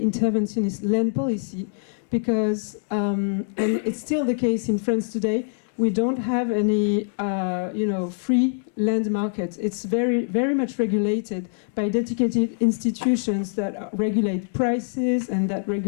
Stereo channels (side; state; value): right; silent; digital silence